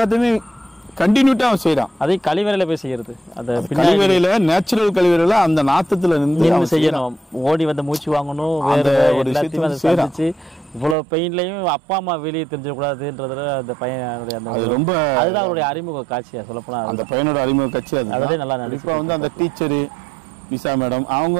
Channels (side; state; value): left; drops out; at 11.0 s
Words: கண்டினியூட்டா அவன் செய்யறான். அதே கழிவறையில போய் செய்யறது, அந்த கழிவறையில நேச்சுரல் கழிவறையில அந்த நாத்தத்துல நின்று செய்யணும், ஓடி வந்து மூச்சு வாங்கணும், வேற ஒரு எல்லாத்தையும் சந்திச்சு இவ்வளவு பெயின்லயும் அப்பா அம்மா வெளியே தெரிஞ்சிடக்கூடாதுன்றதுல அந்த பையனுடைய அந்த ரொம்ப அதுதான் அவருடைய அறிமுக காட்சியா சொல்லப்போனா. அந்த பையனோட அறிமுக காட்சி அதுவே நல்லா நடிப்பா வந்து அந்த டீச்சரு நிஷா மேடம் அவங்க